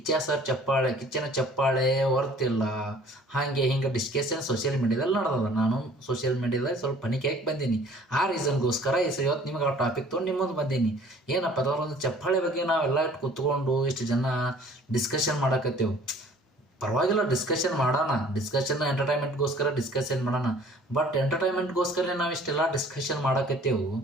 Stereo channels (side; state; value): both; normal; correlation 0.53